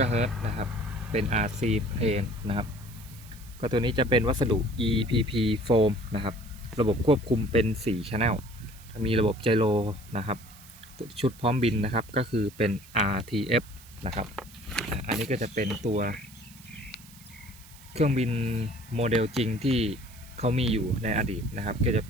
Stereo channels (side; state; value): right; noise; hiss, 21 dB below the sound